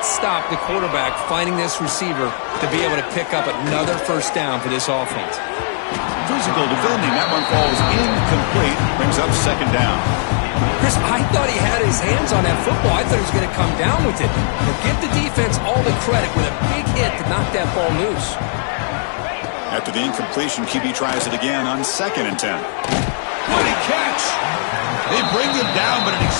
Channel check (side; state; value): right; silent; 67 dB below the other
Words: stop the quarterback finding this receiver to be able to pick up another first down for this offense. Physical defending. That one falls incomplete. Brings up 2nd down. Chris, I thought he had his hands on that football. I thought he was going to come down with it. But give the defense all the credit with a big hit to knock that ball loose. After the incompletion, QB tries it again on 2nd and 10. What a catch! They bring him down, but an